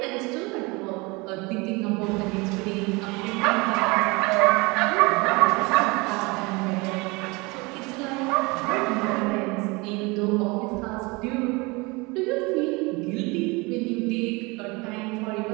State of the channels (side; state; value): left; quieter; 25.8 dB